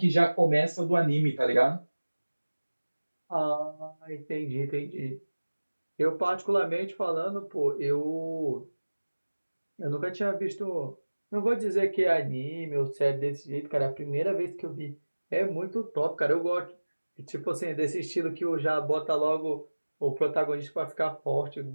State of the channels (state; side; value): inverted; both; correlation -1.00